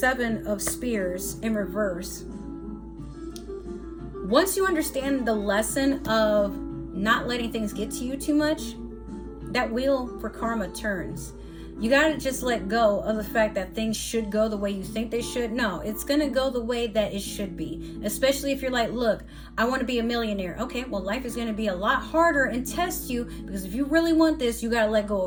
of Spears in reverse. Once you understand the lesson of not letting things get to you too much, that wheel for karma turns. You gotta just let go of the fact that things should go the way you think they should. No, it's gonna go the way that it should be. Especially if you're like, look, I want to be a millionaire. Okay, well, life is gonna be a lot harder and test you, because if you really want this, you gotta let go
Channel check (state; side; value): identical; both; correlation 1.00